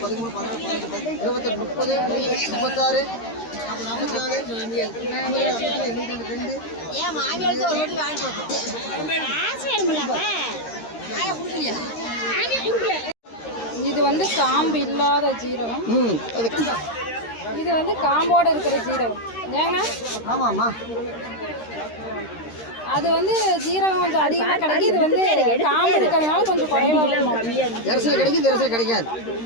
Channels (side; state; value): right; late; 13 ms